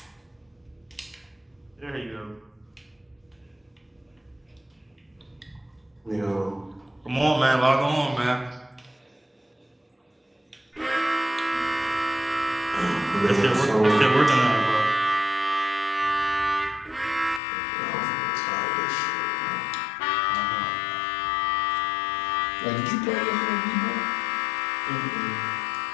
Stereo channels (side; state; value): right; drops out; at 17.4 s